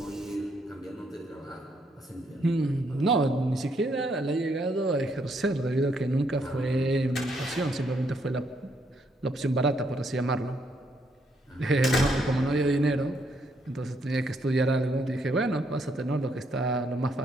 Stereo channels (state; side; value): normal; both; correlation 0.74